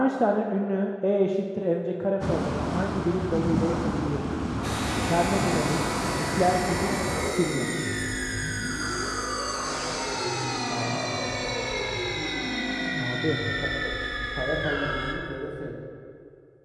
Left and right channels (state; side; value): identical; both; correlation 1.00